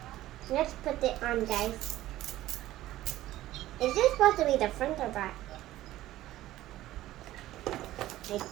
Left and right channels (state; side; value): quieter; left; 15.0 dB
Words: Let's put it on, guys. Is this supposed to be the front or back? I